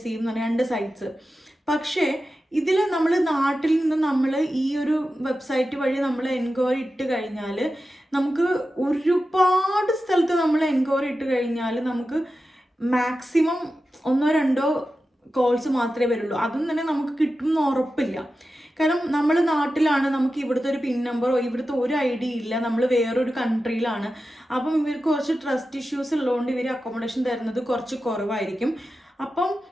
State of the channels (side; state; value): both; normal; correlation 0.92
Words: എന്ന് പറഞ്ഞ 2 സൈറ്റ്സ്. പക്ഷേ ഇതിൽ നമ്മൾ നാട്ടിൽ നിന്ന് നമ്മൾ ഈ ഒരു വെബ്സൈറ്റ് വഴി നമ്മൾ എൻക്വയറി ഇട്ട് കഴിഞ്ഞാൽ നമുക്ക് ഒരുപാട് സ്ഥലത്ത് നമ്മൾ എൻക്വയറി ഇട്ട് കഴിഞ്ഞാൽ നമുക്ക് മാക്സിമം 1-2 കോൾസ് മാത്രമേ വരുള്ളൂ. അതും തന്നെ നമുക്ക് കിട്ടുമെന്ന് ഉറപ്പില്ല. കാരണം നമ്മൾ നാട്ടിലാണ്, നമുക്ക് ഇവിടുത്തെ ഒരു പിൻ നമ്പറോ ഇവിടുത്തെ ഒരു ഐഡിയ ഇല്ല, നമ്മൾ വേറൊരു കൺട്രിയിലാണ്. അപ്പം ഇവർക്ക് കുറച്ച് ട്രസ്റ്റ് ഇഷ്യൂസ് ഉള്ളതുകൊണ്ട് ഇവർ അക്കോമഡേഷൻ തരുന്നത് കുറച്ച് കുറവായിരിക്കും. അപ്പം